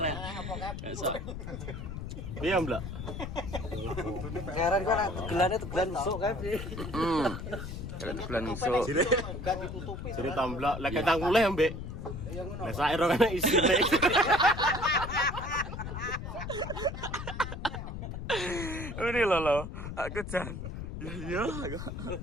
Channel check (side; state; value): left; noise; rumble, 7 dB below the sound